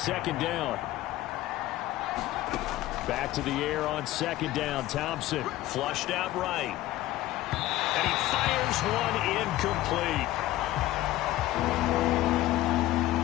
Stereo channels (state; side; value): quieter; right; 15.7 dB